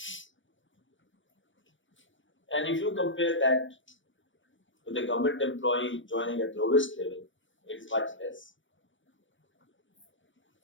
And if you compare that with the government employee joining at lowest level, it is much less.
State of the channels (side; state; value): right; late; 0.56 ms